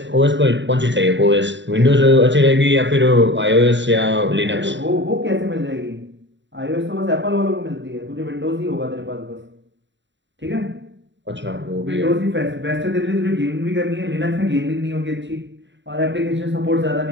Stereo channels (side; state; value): left; late; 0.53 ms